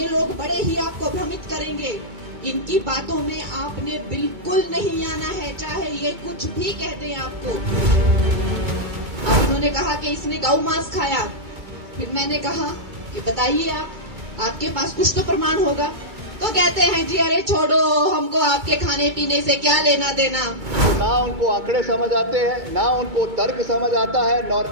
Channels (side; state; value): left; late; 2.2 ms